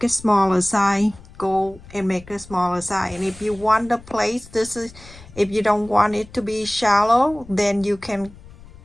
a smaller size, go and make a smaller size. And if you want the place, this is, if you don't want it to be shallow, then you can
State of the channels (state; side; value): noise; left; rumble, 20 dB below the sound